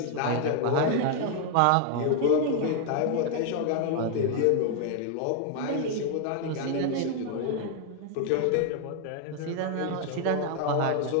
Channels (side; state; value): both; different; correlation 0.00